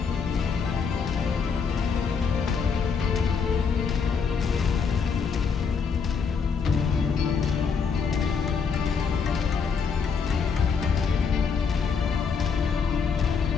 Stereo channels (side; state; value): right; quieter; 5.8 dB